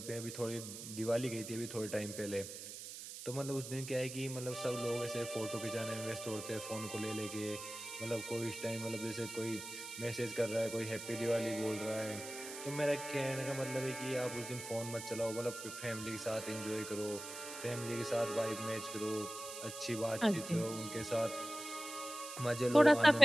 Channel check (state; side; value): noise; right; hiss, 9 dB below the sound